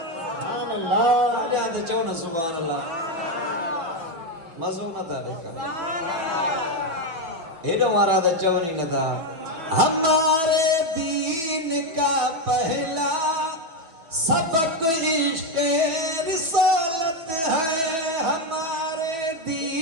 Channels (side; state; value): left; late; 6.0 ms